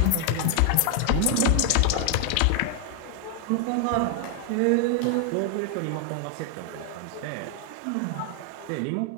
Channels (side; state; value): both; different; correlation 0.00